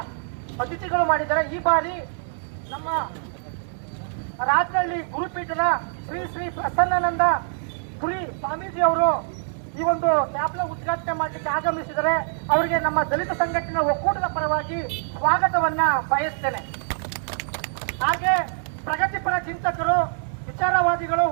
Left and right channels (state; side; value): silent; left; digital silence